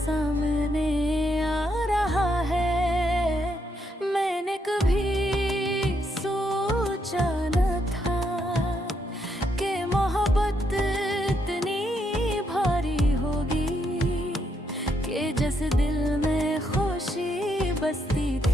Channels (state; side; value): normal; both; correlation 0.77